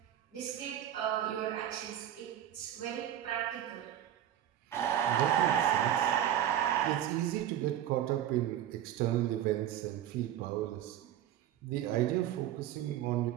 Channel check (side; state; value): left; quieter; 11.3 dB